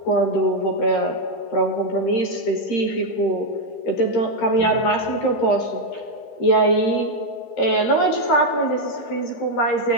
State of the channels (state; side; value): late; right; 15 ms